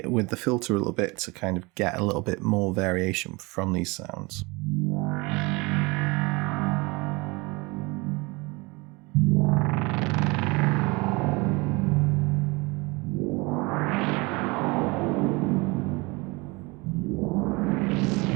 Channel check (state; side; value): quieter; left; 25.6 dB